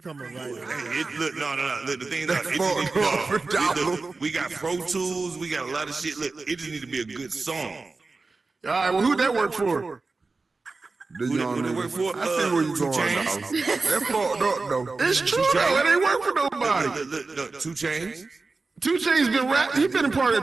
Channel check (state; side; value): quieter; left; 3.8 dB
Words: a writer. Look, no. Look, the thing is, look, we got Pro Tools, we got a lot of shit. Look, it just need to be a good song. All right, well, who'd that work for? Who they work for? I see where you 2 going, Chainz. dog. That fucked up, though. It's true, though. It ain't work for nobody. Look, 2 Chainz. 2 Chainz been rapping. He been a part